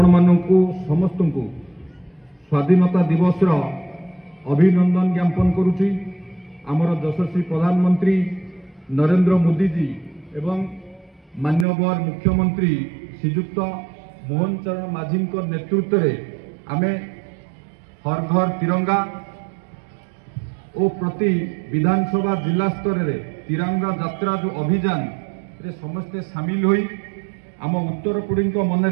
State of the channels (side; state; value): left; drops out; at 11.7 s